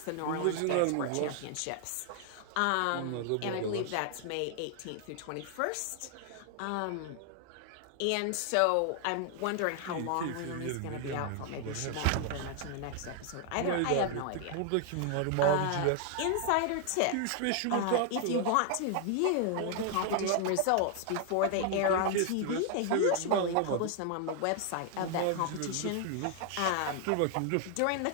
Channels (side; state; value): both; different; correlation 0.00